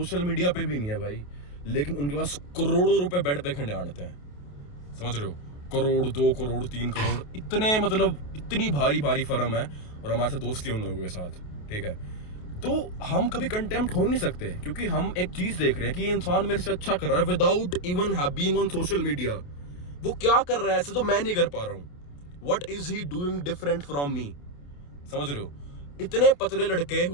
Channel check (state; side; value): late; right; 28 ms